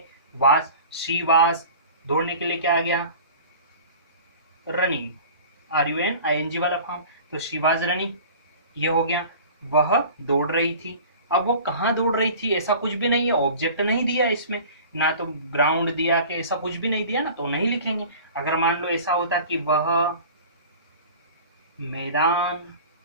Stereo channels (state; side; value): inverted; both; correlation -0.41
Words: वास, शी वास। दौड़ने के लिए क्या आ गया, रनिंग, RUNING वाला फॉर्म, तो शी वाज रनिंग, ये हो गया। वह दौड़ रही थी, अब वो कहाँ दौड़ रही थी ऐसा कुछ भी नहीं है, ऑब्जेक्ट नहीं दिया इसमें, ना तो ग्राउंड दिया कि ऐसा कुछ भी नहीं दिया ना, तो नहीं लिखेंगे। अगर मान लो ऐसा होता कि वह मैदान